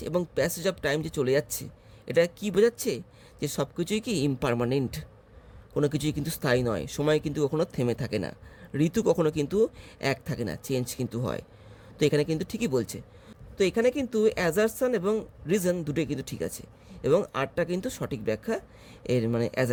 এবং প্যাসেজ অফ টাইম যে চলে যাচ্ছে, এটা কি বোঝাচ্ছে? যে সব কিছুই কি ইমপারমানেন্ট, কোনো কিছুই কিন্তু স্থায়ী নয়, সময় কিন্তু কখনো থেমে থাকে না, ঋতু কখনো কিন্তু এক থাকে না, চেঞ্জ কিন্তু হয়। তো এখানে কিন্তু ঠিকই বলছে। তো এখানে কিন্তু অ্যাজারশন এবং রিজন দুটোই কিন্তু ঠিক আছে, এবং আরটা কিন্তু সঠিক ব্যাখ্যা এর মানে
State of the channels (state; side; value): identical; both; correlation 1.00